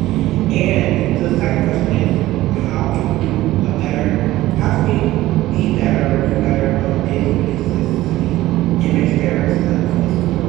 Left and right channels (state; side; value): quieter; left; 16.3 dB